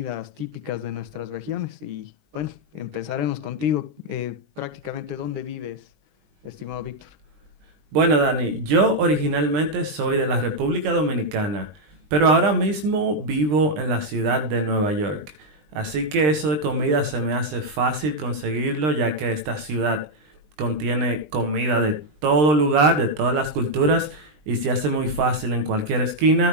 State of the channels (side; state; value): left; late; 20 ms